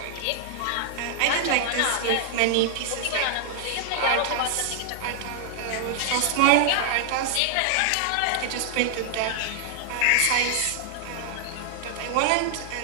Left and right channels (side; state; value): both; different; correlation 0.00